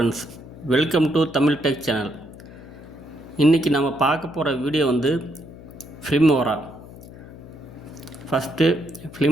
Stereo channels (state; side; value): noise; left; hum, 17 dB below the sound